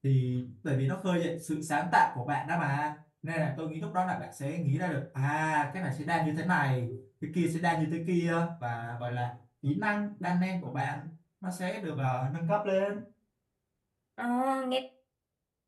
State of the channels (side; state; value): both; identical; correlation 1.00